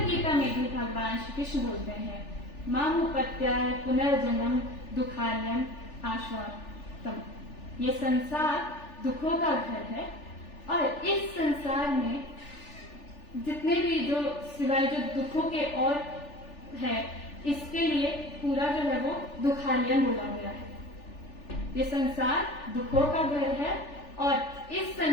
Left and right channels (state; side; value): late; right; 3.4 ms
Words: गीता में भी भगवान श्री कृष्ण बोलते हैं मामुपत्याय पुनर्जन्म दुखालयम आश्वातम। ये संसार दुखों का घर है और इस संसार में जितने भी जो सिवाय जो दुखों के और है इसके लिए पूरा जो है वो दुखालयम बोला गया है। ये संसार दुखों का घर है और इस